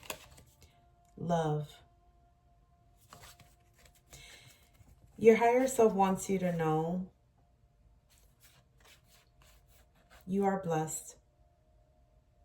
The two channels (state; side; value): identical; both; correlation 1.00